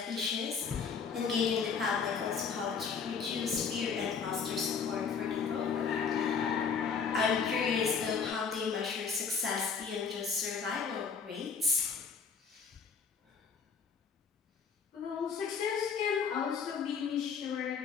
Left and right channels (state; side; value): quieter; right; 6.0 dB